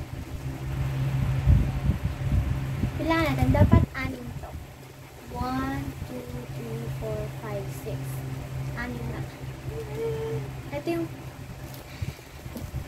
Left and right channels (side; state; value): both; identical; correlation 1.00